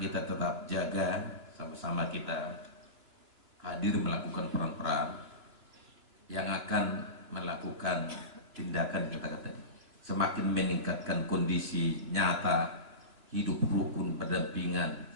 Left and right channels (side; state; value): left; late; 2.9 ms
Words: tetap jaga, sama-sama kita hadir melakukan peran-peran yang akan melakukan tindakan kita tadi. Semakin meningkatkan kondisi nyata hidup rukun berdampingan